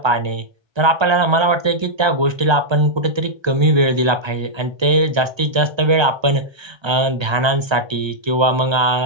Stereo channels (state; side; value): late; left; 1.3 ms